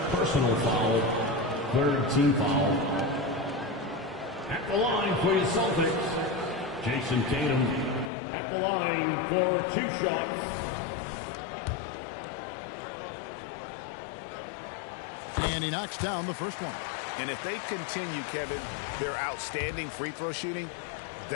personal foul, third team foul. At the line for your Celtics, Jason Tatum at the line for 2 shots. And he knocks down the first one. And if they continue, Kevin, their outstanding free throw shooting,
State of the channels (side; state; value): right; drops out; at 8.1 s